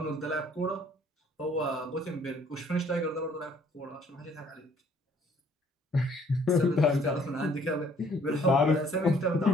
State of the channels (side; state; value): both; normal; correlation 0.61